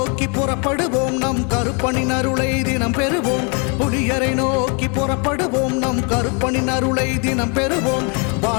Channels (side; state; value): right; quieter; 35.5 dB